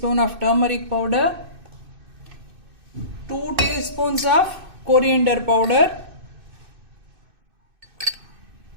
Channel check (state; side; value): late; left; 2.6 ms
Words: of turmeric powder, 2 teaspoons of coriander powder,